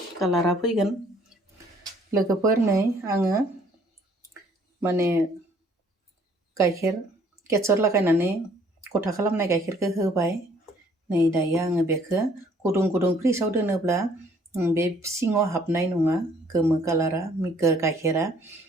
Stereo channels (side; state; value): both; normal; correlation 0.61